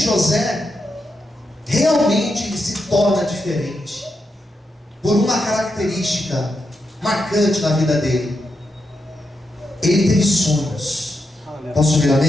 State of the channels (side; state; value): both; normal; correlation 0.85